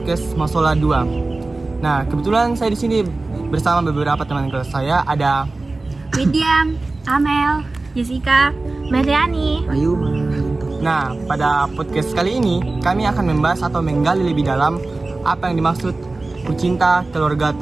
Masola 2. Nah, kebetulan saya di sini bersama beberapa teman kelas saya. Ada Widya, Amel, Jessica, Mariani, Ayu. Nah, pada podcast kali ini kami akan membahas atau menggali lebih dalam apa yang dimaksud kucinta keluarga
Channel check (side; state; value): left; quieter; 3.3 dB